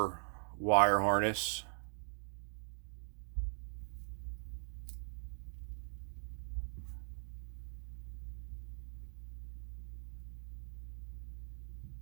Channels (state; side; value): silent; left; digital silence